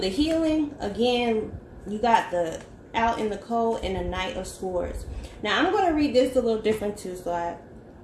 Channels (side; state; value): both; identical; correlation 1.00